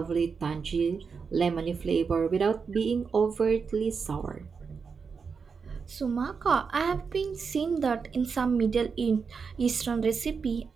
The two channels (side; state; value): left; quieter; 5.5 dB